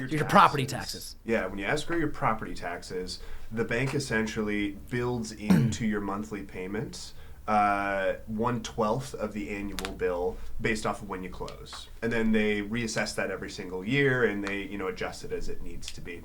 property taxes. Yeah, when you escrow your property taxes, the bank essentially builds into your monthly payments 1/12 of the annual bill based off of when you close. And then they reassess that every single year, and they adjust it as it needs to be.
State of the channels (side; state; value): both; identical; correlation 1.00